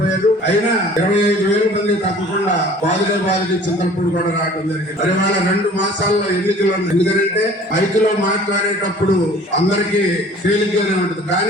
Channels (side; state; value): both; normal; correlation 0.49